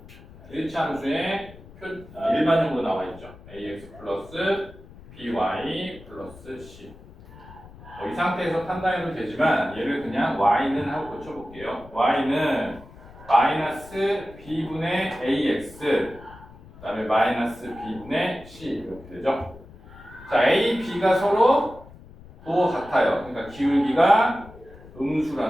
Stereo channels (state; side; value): noise; left; rumble, 20 dB below the sound